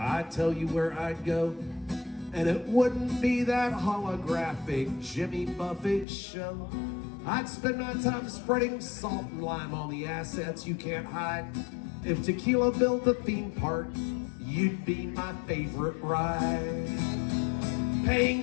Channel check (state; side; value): drops out; right; at 6.1 s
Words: tell you where I'd go. And it wouldn't be that holographic Jimmy Buffett show. I'd spend my time spreading salt and lime on the assets you can't hide. If tequila built a theme park, you'd be my favorite ride.